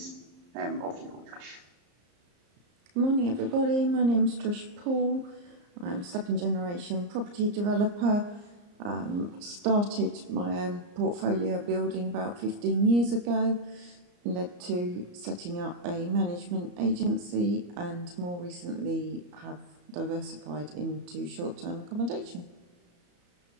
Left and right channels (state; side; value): late; left; 34 ms